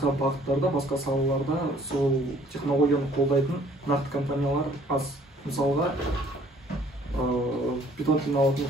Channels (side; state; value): both; normal; correlation 0.58